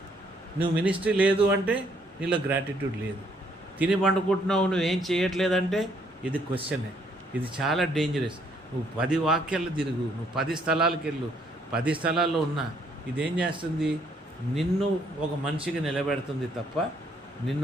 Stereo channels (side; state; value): both; normal; correlation 0.68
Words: నువ్వు మినిస్ట్రీ లేదు అంటే నీలో గ్రాటిట్యూడ్ లేదు. తిని పండుకుంటున్నావు, నువ్వేం చేయట్లేదంటే ఇది క్వశ్చనే. ఇది చాలా డేంజరస్. నువ్వు 10 వాక్యాలు తిరుగు, నువ్వు 10 స్థలాలకు వెళ్ళు, 10 స్థలాల్లో ఉన్నా ఇదేం చేస్తుంది? నిన్ను ఒక మనిషిగా నిలబెడుతుంది తప్ప